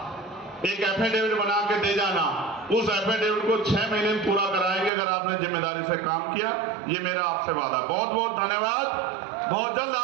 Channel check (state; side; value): drops out; left; at 4.9 s